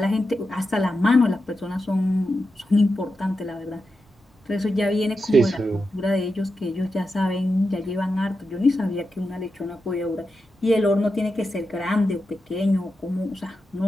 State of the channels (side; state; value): both; normal; correlation 0.89